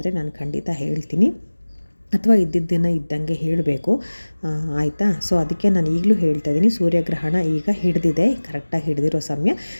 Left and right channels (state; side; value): inverted; both; correlation -1.00